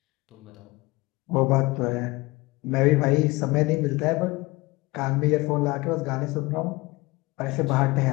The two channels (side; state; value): right; quieter; 22.7 dB